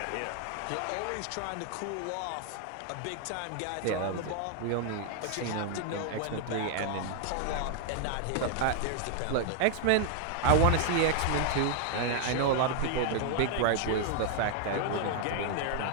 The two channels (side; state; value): both; different; correlation 0.00